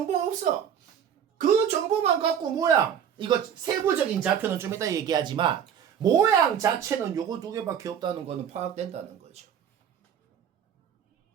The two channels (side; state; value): left; quieter; 8.7 dB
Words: 없어. 그 정보만 갖고 모양 이거 세부적인 좌표는 좀 이따 얘기하지만 모양 자체는 요거 두 개밖에 없다는 거는 파악된다는 거죠.